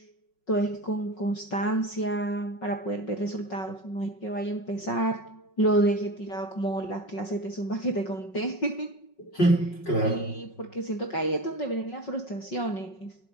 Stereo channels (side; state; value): right; late; 5.4 ms